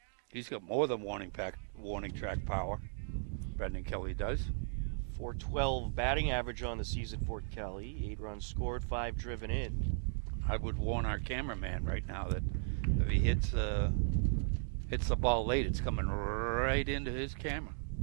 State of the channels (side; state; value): left; silent; digital silence